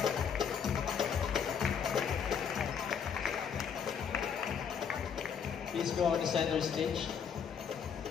Please go on the center stage.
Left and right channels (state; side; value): quieter; right; 7.2 dB